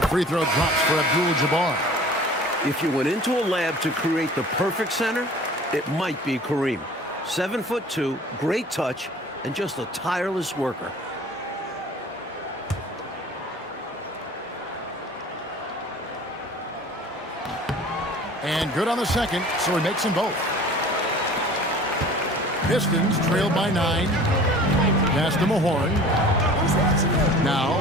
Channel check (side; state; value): both; normal; correlation 0.45